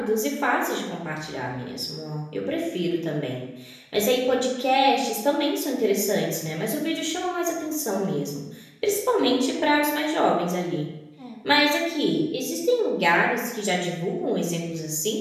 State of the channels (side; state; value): both; identical; correlation 1.00